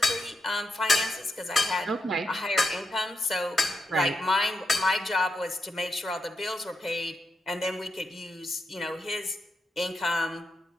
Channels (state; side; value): normal; both; correlation 0.84